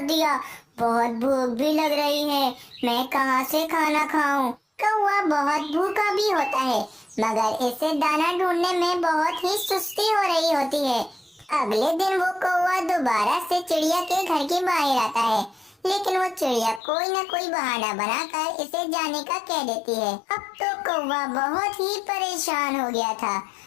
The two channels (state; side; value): drops out; right; at 16.8 s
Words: दिया? बहुत भूख भी लग रही है, मैं कहाँ से खाना खाऊं? कौवा बहुत भूखा भी होता है, मगर इसे दाना ढूंढने में बहुत ही सुस्ती हो रही होती है। अगले दिन वो कौवा दोबारा से चिड़िया के घर के बाहर आता है, लेकिन वो चिड़िया कोई न कोई बहाना बनाकर इसे जाने का कह देती है। अब तो कौवा बहुत ही परेशान हो गया था,